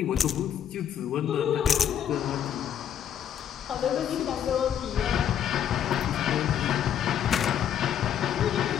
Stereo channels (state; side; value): quieter; right; 9.5 dB